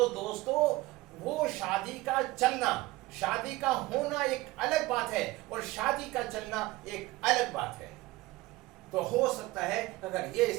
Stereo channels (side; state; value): left; quieter; 19.4 dB